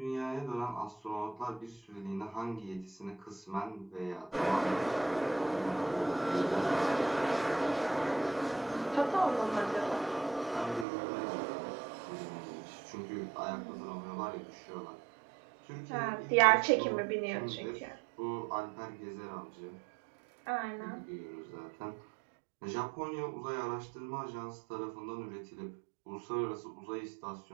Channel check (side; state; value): left; drops out; at 10.9 s